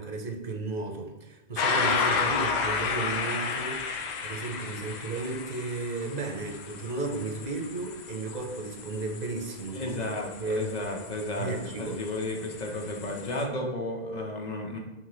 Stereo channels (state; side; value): late; right; 2.0 ms